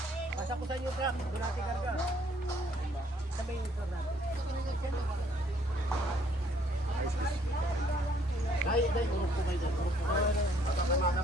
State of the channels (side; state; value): both; normal; correlation 0.64